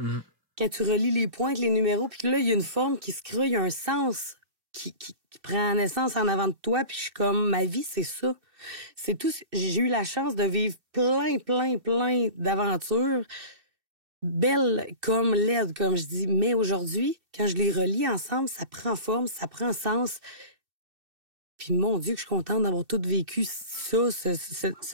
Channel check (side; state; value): left; late; 2.6 ms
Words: quand tu relis les points avec les numéros, puis que là, il y a une forme qui se crée, il y a un sens qui prend naissance en avant de toi, puis je suis comme, ma vie, c'est ça. C'est tout. J'ai eu la chance de vivre plein d'aventures, belles comme laides, comme je dis. Mais aujourd'hui, quand je les relis ensemble, ça prend forme, ça prend sens. Puis mon Dieu, que je suis contente d'avoir tout vécu ça,